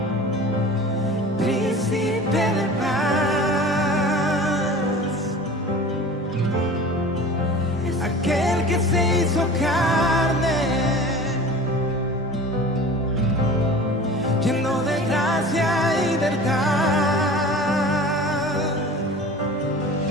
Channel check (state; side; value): normal; both; correlation 0.39